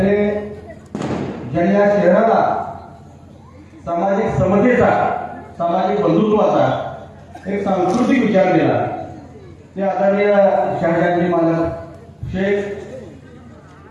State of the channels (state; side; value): identical; both; correlation 1.00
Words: ज्यांनी या शहराला सामाजिक समतेचा, सामाजिक बंधुत्वाचा एक सांस्कृतिक विचार दिला ते आदरणीय शहाजांनी मालक शेख,